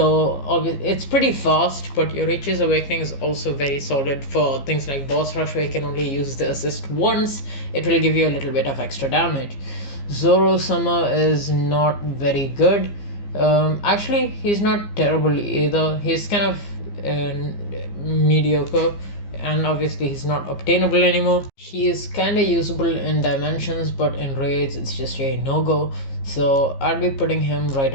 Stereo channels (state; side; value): late; right; 15 ms